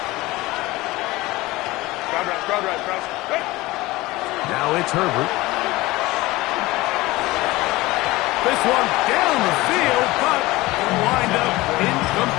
Crowd right. Now it's Herbert. This one down the field, but wind up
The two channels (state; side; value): quieter; right; 19.8 dB